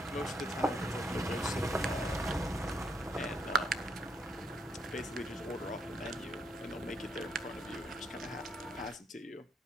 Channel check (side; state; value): both; normal; correlation 0.71